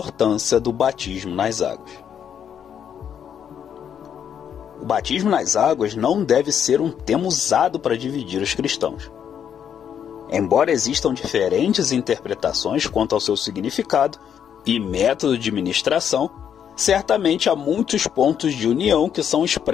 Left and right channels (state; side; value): quieter; right; 8.5 dB